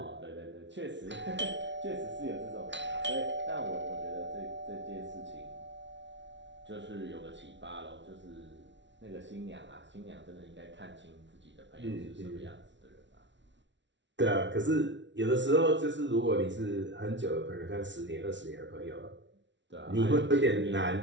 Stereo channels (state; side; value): late; left; 0.53 ms